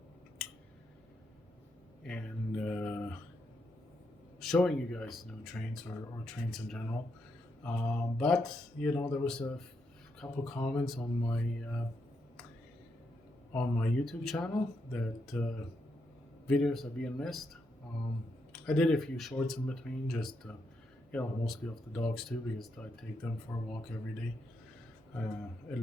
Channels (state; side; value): normal; both; correlation 0.81